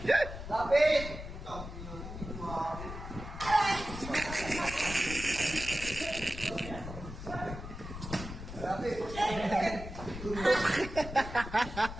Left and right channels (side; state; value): left; noise; rumble, 9 dB below the sound